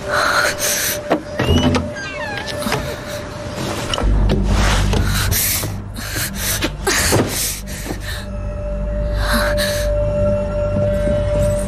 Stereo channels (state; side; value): identical; both; correlation 1.00